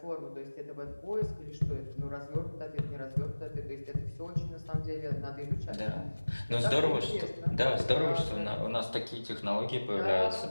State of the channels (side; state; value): both; inverted; correlation -1.00